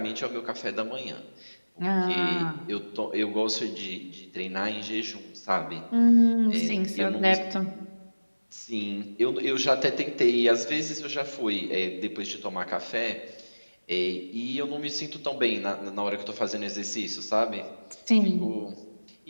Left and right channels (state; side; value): inverted; both; correlation -1.00